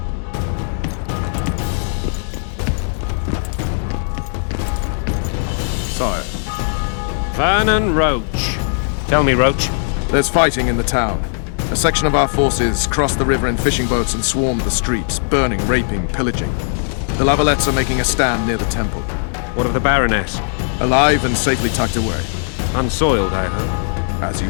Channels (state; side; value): silent; right; digital silence